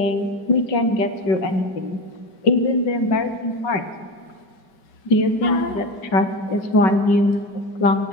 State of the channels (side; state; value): right; late; 5.3 ms